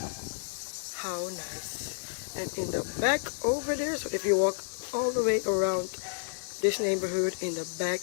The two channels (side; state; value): right; silent; 57 dB below the other